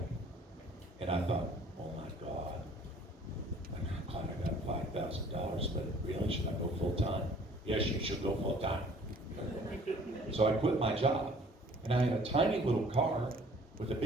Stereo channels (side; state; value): both; normal; correlation 0.54